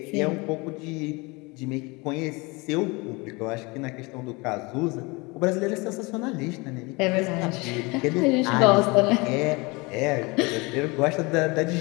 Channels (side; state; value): right; quieter; 26.1 dB